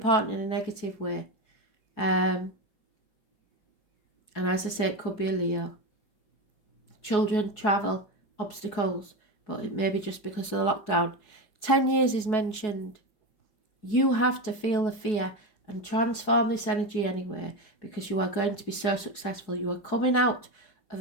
in a negative way. And as I say, it could be a Leo. Children, travel, obstacles, but it may be just because of the lockdown. 10 years is mentioned. You have to feel the fear and transform this energy anyway, because you are going to be so successful. You are coming out of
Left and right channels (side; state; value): right; late; 4.7 ms